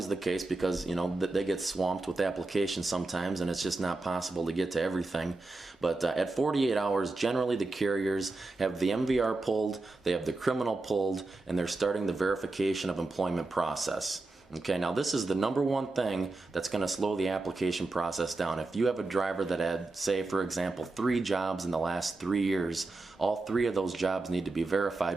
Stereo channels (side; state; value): left; quieter; 3.2 dB